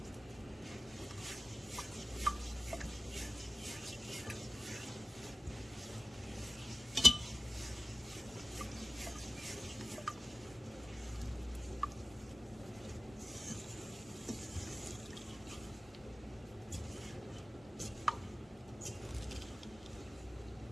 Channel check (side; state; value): both; normal; correlation 0.95